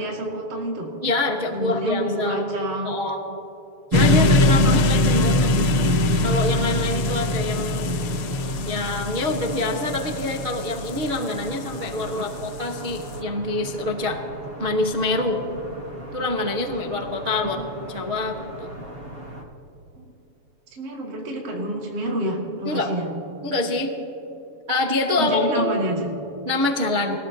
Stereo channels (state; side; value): late; left; 7.1 ms